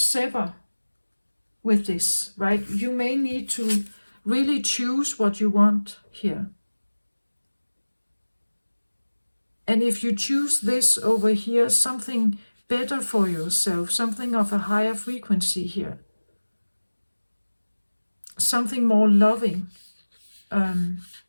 with this, right? You may need to really choose what you want here. And if you choose this over here, something better for yourself, something of a higher frequency here, something more loving,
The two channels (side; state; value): both; inverted; correlation -1.00